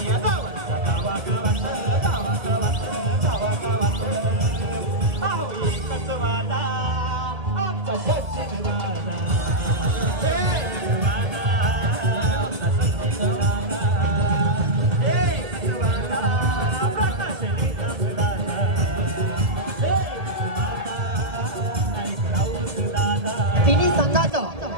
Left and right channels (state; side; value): late; left; 1.7 ms